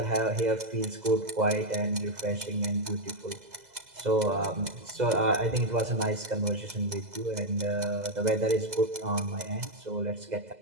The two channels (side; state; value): left; late; 2.0 ms